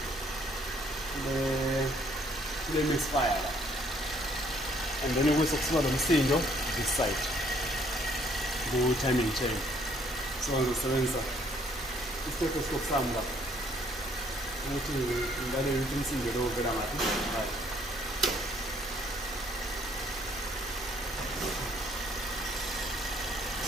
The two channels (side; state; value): both; normal; correlation 0.64